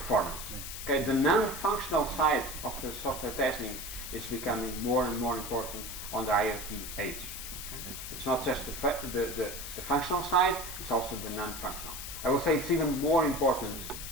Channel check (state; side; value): noise; left; hiss, 8 dB below the sound